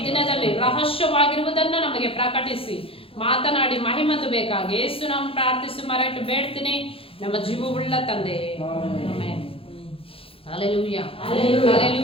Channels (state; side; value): late; right; 0.27 ms